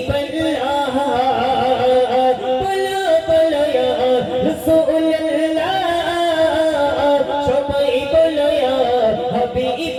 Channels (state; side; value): identical; both; correlation 1.00